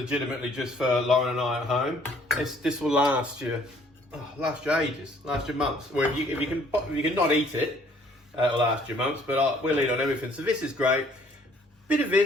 just for Lauren and I at home. This will last you. Last you ages, last you months. Well, if you can not eat it, it'll last you months. But we'll eat on everything. So this is great. Bit of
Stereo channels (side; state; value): both; normal; correlation 0.60